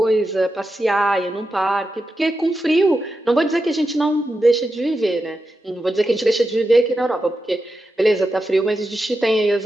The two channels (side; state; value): both; normal; correlation 0.89